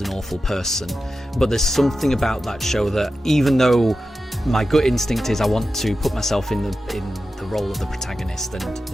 an awful person. But there's something about that show that, even though my gut instinct is I want to put myself in the role of the protagonist and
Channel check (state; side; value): normal; both; correlation 0.92